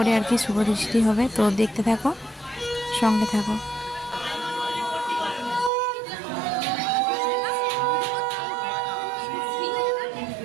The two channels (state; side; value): drops out; left; at 5.7 s